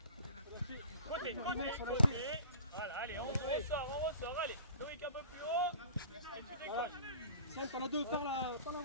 Côté. Voilà, allez, on ressort, allez. Loïc un peu plus haut. Et tu décroches. Sam, t'en as deux, par la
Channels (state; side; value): inverted; both; correlation -0.42